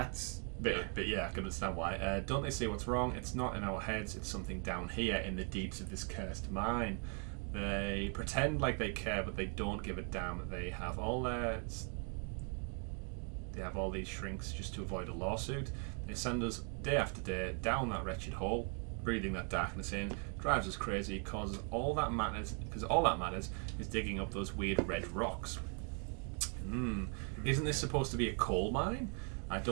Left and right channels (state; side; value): quieter; left; 39.8 dB